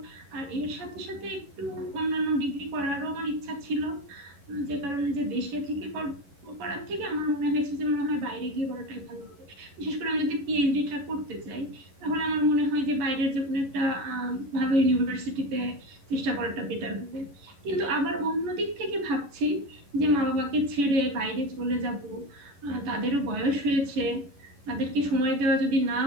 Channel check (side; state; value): left; late; 11 ms